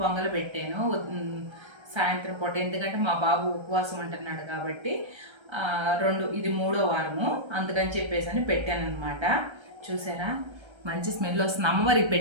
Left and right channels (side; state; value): left; late; 1.3 ms